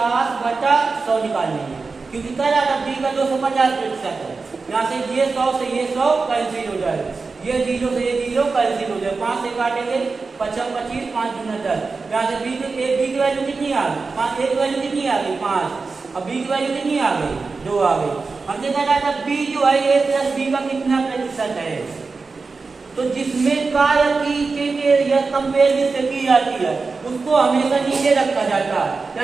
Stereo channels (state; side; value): quieter; left; 4.3 dB